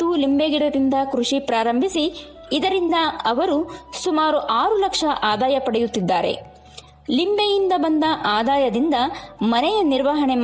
ಲಿಂಬೆ ಗಿಡದಿಂದ ಕೃಷಿ ಪ್ರಾರಂಭಿಸಿ ಇದರಿಂದ ಅವರು ಸುಮಾರು 6 ಲಕ್ಷ ಆದಾಯ ಪಡೆಯುತ್ತಿದ್ದಾರೆ. ಲಿಂಬೆಯಿಂದ ಬಂದ ಆದಾಯದಿಂದ ಮನೆಯ ನಿರ್ವಹಣೆ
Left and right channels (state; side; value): identical; both; correlation 1.00